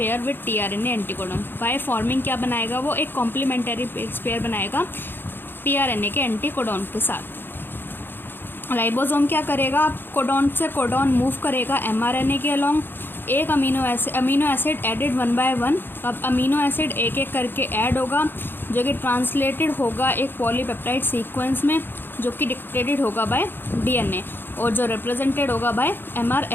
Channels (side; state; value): right; late; 0.099 ms